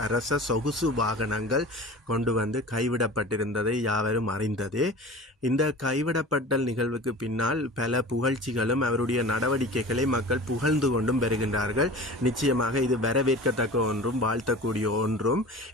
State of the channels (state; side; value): normal; both; correlation 0.38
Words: அரச சொகுசு வாகனங்கள் கொண்டு வந்து கைவிடப்பட்டிருந்ததை யாவரும் அறிந்ததே. இந்த கைவிடப்பட்டல் நிகழ்வுக்கு பின்னால் பல புகழ்ச்சிகளும் அவருடைய நடவடிக்கைகளை மக்கள் புகழ்ந்து கொண்டும் பெறுகின்றார்கள். நிச்சயமாக இது வரவேற்கத்தக்க ஒன்றும் வாழ்த்தக்கூடிய ஒன்றும்.